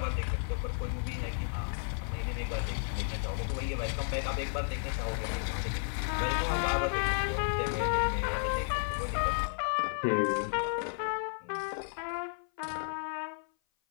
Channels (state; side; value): silent; right; 56 dB below the other